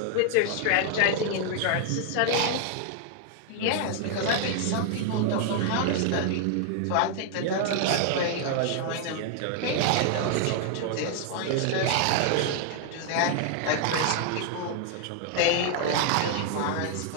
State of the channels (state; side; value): different; both; correlation 0.00